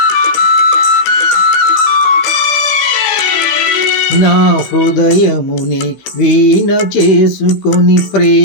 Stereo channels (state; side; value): late; right; 15 ms